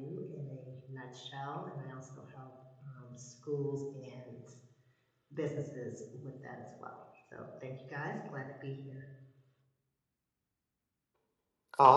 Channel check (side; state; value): both; identical; correlation 1.00